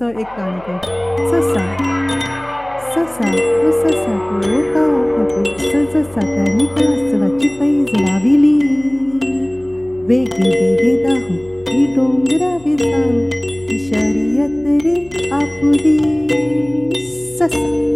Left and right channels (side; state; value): left; noise; hum, 24 dB below the sound